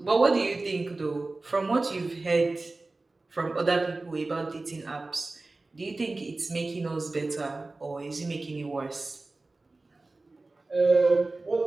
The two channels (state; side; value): quieter; left; 3.2 dB